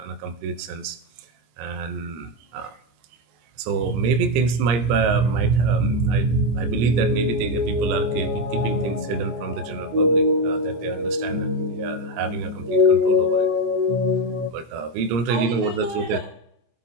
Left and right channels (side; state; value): left; late; 26 ms